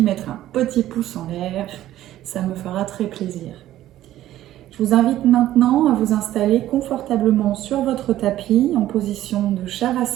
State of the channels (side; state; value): left; quieter; 13.6 dB